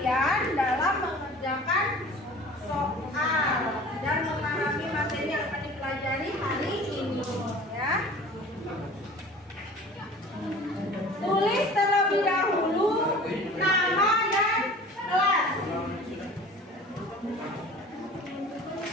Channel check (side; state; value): both; normal; correlation 0.43